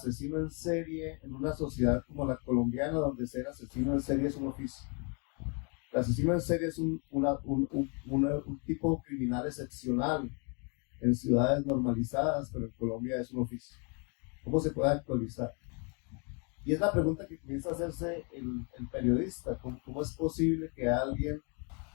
en serie en una sociedad como la colombiana, donde ser asesino en serie es un oficio. El asesino en serie es un tipo criminal excepcional en ciudades normalizadas, pero en Colombia es un oficio. ¿Cómo se puede actualizar? Y es la pregunta que comienza a hacerse el periodista. ¿Cómo es posible que alguien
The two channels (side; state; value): right; quieter; 36.0 dB